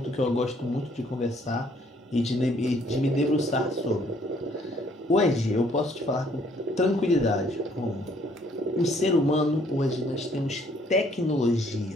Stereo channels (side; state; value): both; normal; correlation 0.63